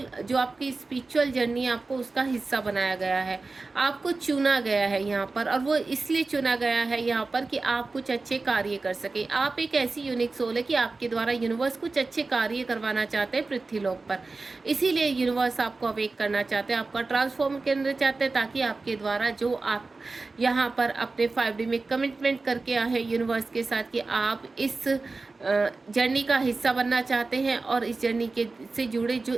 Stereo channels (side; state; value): left; quieter; 3.7 dB